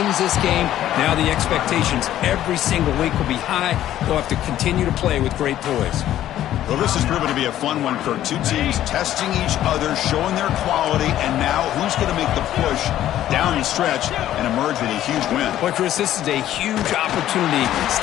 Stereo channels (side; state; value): right; quieter; 12.5 dB